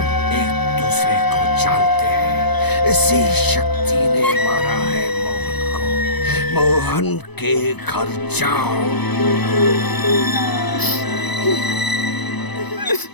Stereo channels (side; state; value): right; late; 0.99 ms